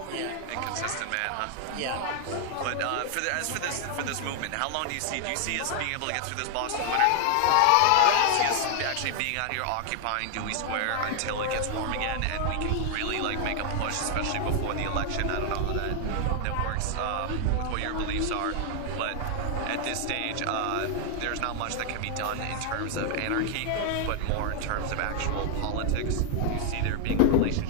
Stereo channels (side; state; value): both; different; correlation 0.00